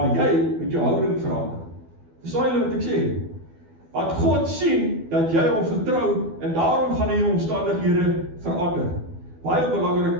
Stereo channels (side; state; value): left; late; 12 ms